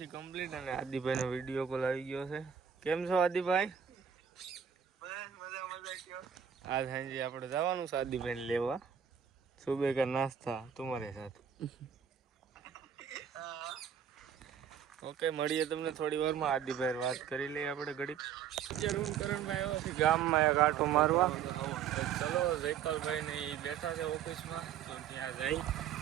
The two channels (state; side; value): quieter; left; 8.2 dB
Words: છે કમ્પ્લીટ અને આદિભાઈનો વિડીયો કોલ આવી ગયો છે. કેમ છો આદિભાઈ? બસ મજા કયો. આજ સાંજે આપણે જવાનું છે આદિભાઈને લેવા. સુબહ કા નાસ્તા તમારે સાથ. ઓકે મળીએ તમને થોડી વારમાં. આદિભાઈ વાત કરી લઈએ આપણે ઘડીક. અત્યારે હું કરણભાઈ આવ્યો છે ગામમાં એક આંટો મારવા. ચલો જયપાલભાઈ ને એ બેઠા છે ઓફિસમાં તો ત્યાં જઈ.